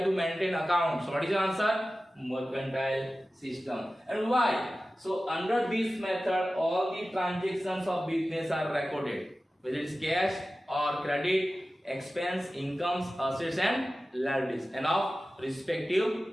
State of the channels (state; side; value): normal; both; correlation 0.95